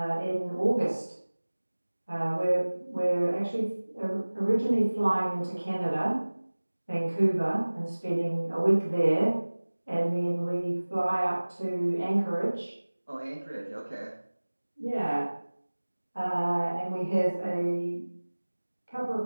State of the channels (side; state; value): both; inverted; correlation -1.00